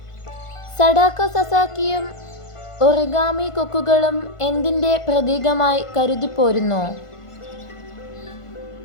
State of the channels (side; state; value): right; late; 1.5 ms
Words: സഡാക്കോ സസാക്കിയും ഒറിഗാമി കൊക്കുകളും എന്തിൻ്റെ പ്രതീകമായി കരുതിപ്പോരുന്നു?